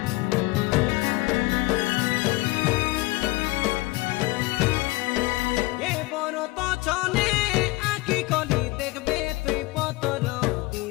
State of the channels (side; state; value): right; quieter; 21.8 dB